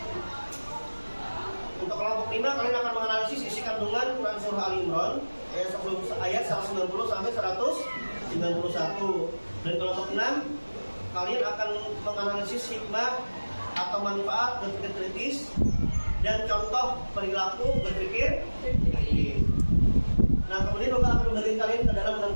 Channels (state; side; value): inverted; both; correlation -1.00